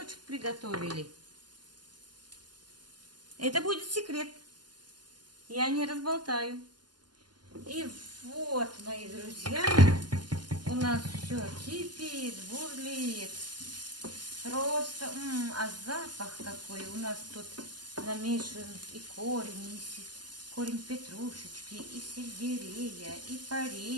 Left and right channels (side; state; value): left; late; 0.71 ms